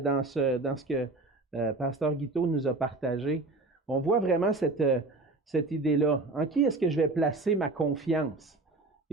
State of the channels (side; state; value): left; quieter; 3.3 dB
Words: ce que Pasteur Guiteau nous a partagé, on voit vraiment cette idée-là. En qui est-ce que je vais placer ma confiance?